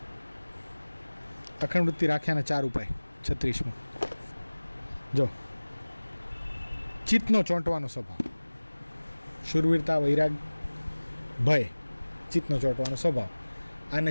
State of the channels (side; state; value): both; inverted; correlation -1.00